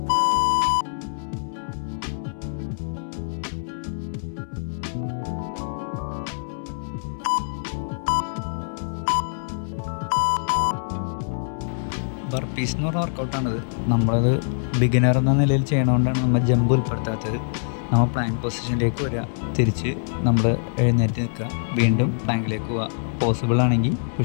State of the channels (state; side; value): silent; right; 63 dB below the other